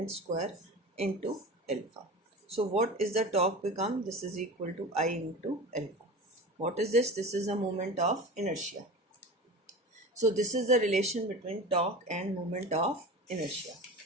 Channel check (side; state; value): both; normal; correlation 0.32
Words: square into alpha. So what is the torque become? This is equal to I into alpha. What is this? This is the moment of inertia. So this is the relation between torque and moment of inertia.